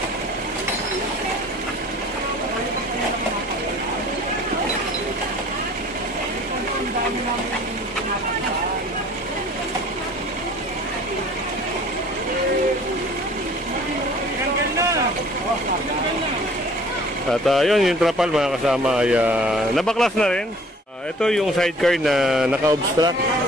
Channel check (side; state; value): both; normal; correlation 0.51